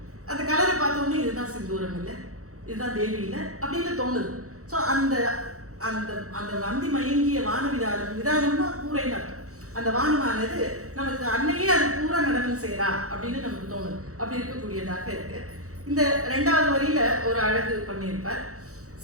அந்த கலரை பார்த்த உடனே இதுதான் சிந்தூரம் இல்லை, இதுதான் தேவி இல்லை அப்படின்னு தோணுது. ஸோ அந்த அந்த அந்த வந்தி மயங்கிய வான விதானம்னா பூரைன்னு அர்த்தம். அந்த வானமானது நமக்கு அன்னையே அது பூரா நடனம் செய்யறா அப்படின்னு நமக்கு தோணுது. அப்படி இருக்கக்கூடியதாக இருக்கு. இந்த 2வது வரியில ஒரு அழகு பண்ணியிருப்பார்.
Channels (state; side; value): late; left; 0.65 ms